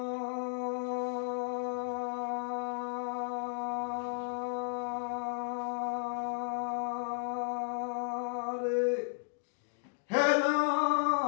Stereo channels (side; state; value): right; silent; digital silence